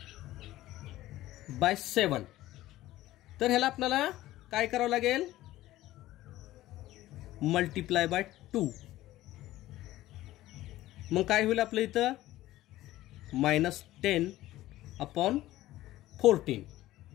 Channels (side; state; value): right; quieter; 15.7 dB